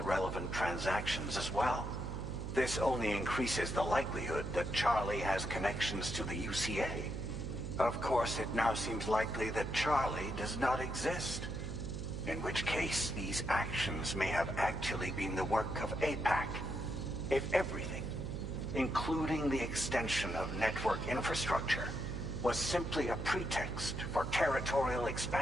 relevant transactions as well. This only increases the likelihood that Charlie has connections to the UCA. Of course, it now seems likely that Charlie does not exist. In which case, these actions may have actually been the work of APAC. If everything, including the extension of network infrastructure, was simply a pretext for territorial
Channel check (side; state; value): right; noise; hum, 5 dB below the sound